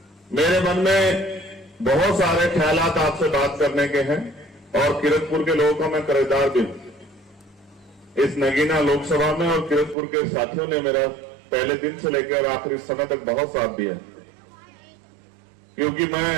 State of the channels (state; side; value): drops out; left; at 10.0 s